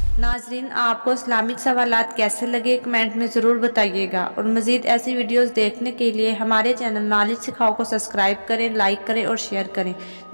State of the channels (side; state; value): both; inverted; correlation -1.00